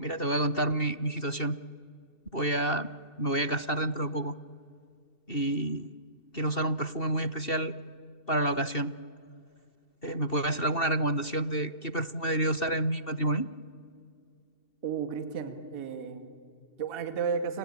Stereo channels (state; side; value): late; right; 2.7 ms